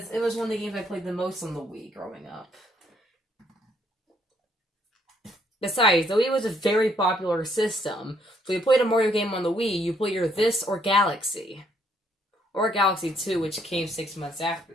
it was one of the games I played the most on the Wii growing up. Besides, the Wii was a very popular system, so you played a Mario game on the Wii, you play either this or Galaxy. Or Galaxy 2, which came 6 months after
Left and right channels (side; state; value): both; normal; correlation 0.69